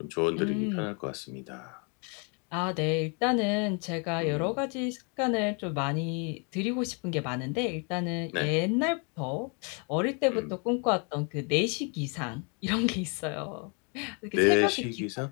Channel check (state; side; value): quieter; right; 35.7 dB